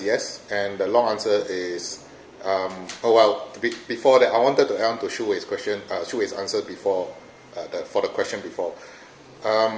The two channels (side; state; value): both; identical; correlation 1.00